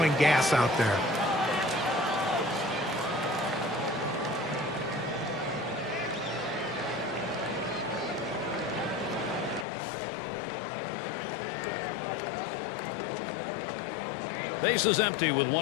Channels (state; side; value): drops out; right; at 9.7 s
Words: gas out there. Base is empty with